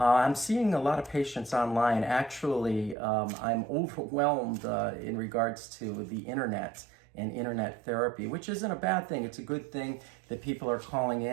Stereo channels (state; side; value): drops out; left; at 3.0 s